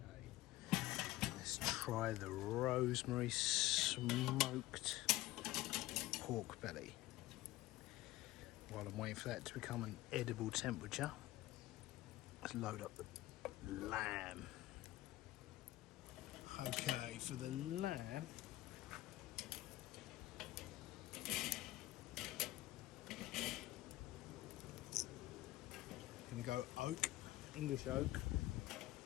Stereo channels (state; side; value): quieter; right; 17.0 dB